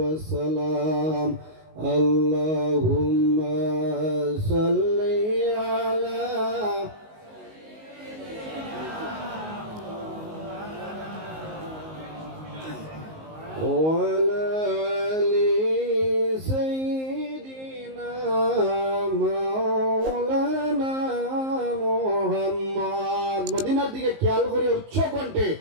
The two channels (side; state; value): left; late; 19 ms